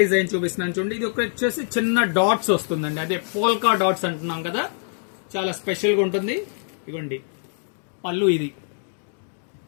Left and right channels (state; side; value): silent; right; 58 dB below the other